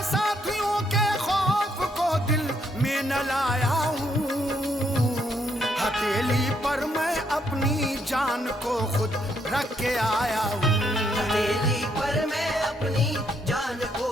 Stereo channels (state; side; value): normal; both; correlation 0.73